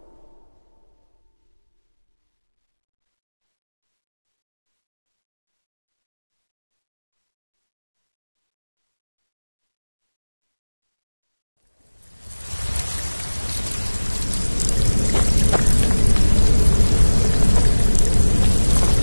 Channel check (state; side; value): inverted; both; correlation -1.00